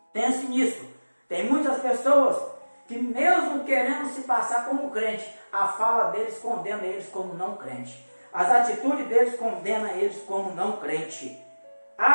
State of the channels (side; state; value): both; inverted; correlation -1.00